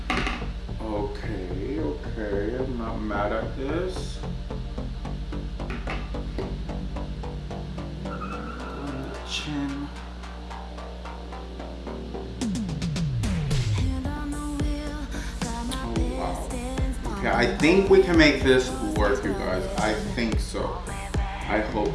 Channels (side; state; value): both; identical; correlation 1.00